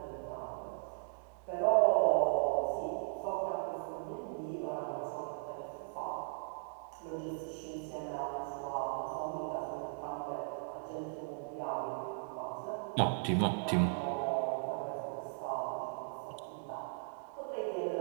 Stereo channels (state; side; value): silent; left; digital silence